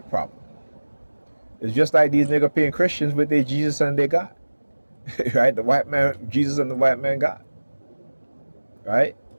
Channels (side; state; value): both; inverted; correlation -1.00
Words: problem. It's just like these nigger paying Christians with their Jesus and their God. Right? The white man, Jesus and the white man God. Right?